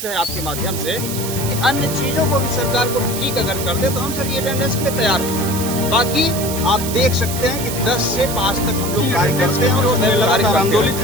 है आपके माध्यम से कि अन्य चीजों को भी सरकार को ठीक अगर कर दे तो हम सर ये अटेंडेंस के लिए तैयार हैं। बाकी आप देख सकते हैं कि 10 से 5 तक हम लोग कार्य करते हैं और लगातार आंदोलित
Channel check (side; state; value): right; noise; hiss, 7 dB below the sound